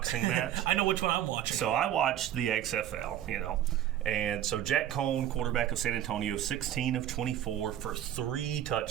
match. I know which one I'm watching. So I watched the XFL, And so Jack Cohn, quarterback of San Antonio, 16 of 24 for 3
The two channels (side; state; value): left; quieter; 11.4 dB